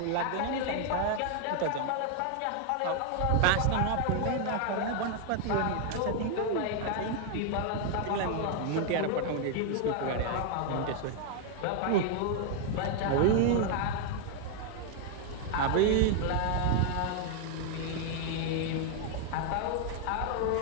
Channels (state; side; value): different; both; correlation 0.00